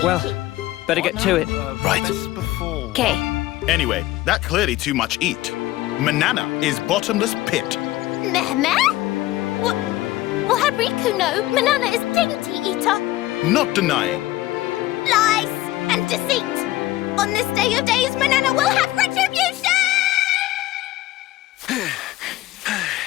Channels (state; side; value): quieter; right; 16.6 dB